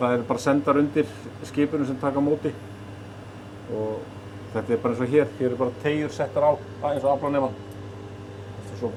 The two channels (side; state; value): both; identical; correlation 1.00